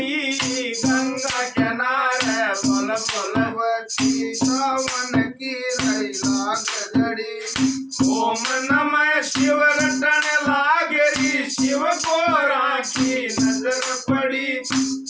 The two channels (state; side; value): identical; both; correlation 1.00